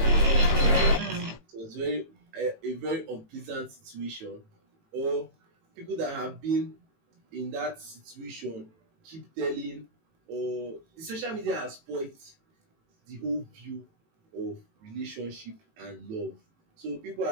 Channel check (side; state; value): left; late; 18 ms